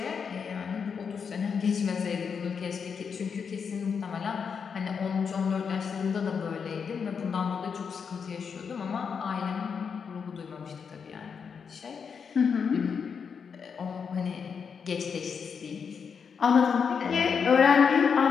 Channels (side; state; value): right; quieter; 6.3 dB